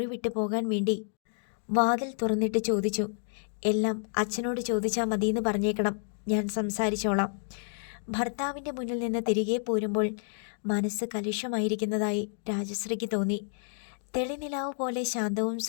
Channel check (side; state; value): right; silent; digital silence